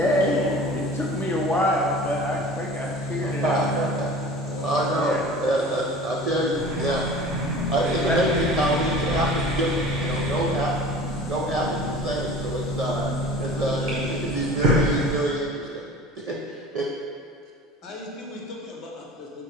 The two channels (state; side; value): normal; both; correlation 0.41